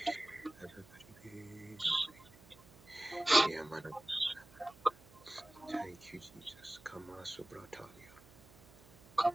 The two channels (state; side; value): noise; right; hum, 23 dB below the sound